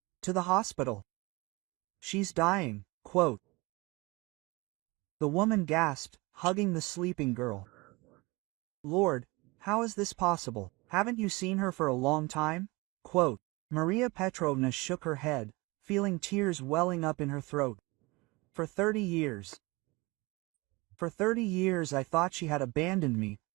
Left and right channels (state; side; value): quieter; left; 24.3 dB